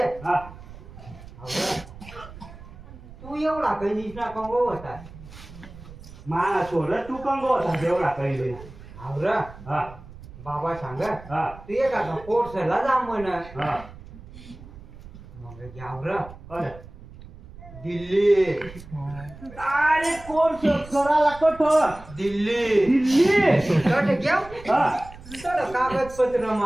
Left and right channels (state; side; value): noise; right; rumble, 17 dB below the sound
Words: हा तू एवढा काही निष्णा कंगो होता माना सोड तू कंगो होता एवढा काही आवरा हा बाबा सांग हा तू एखादा कोर्सला जा म्हण हा मग घ्यावर अरे दिल्ली अरे कोर्स करायला कठोर दिल्ली दिल्ली तर घ्याव हा तर कागदपत्र